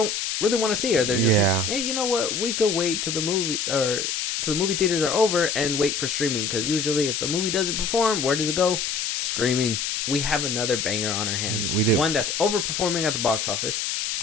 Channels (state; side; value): noise; left; hiss, 1 dB below the sound